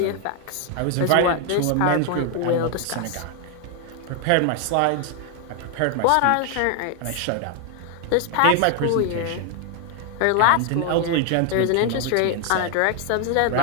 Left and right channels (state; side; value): different; both; correlation 0.01